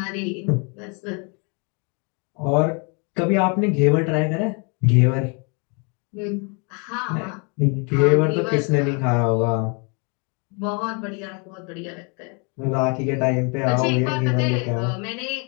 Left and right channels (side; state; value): right; quieter; 35.0 dB